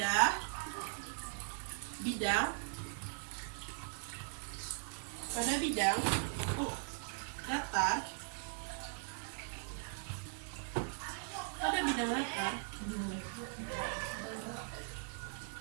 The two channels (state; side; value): silent; left; digital silence